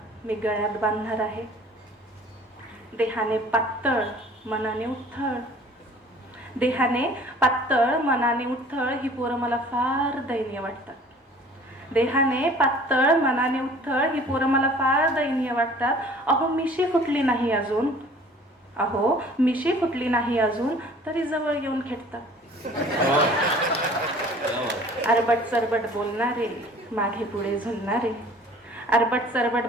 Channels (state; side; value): normal; both; correlation 0.50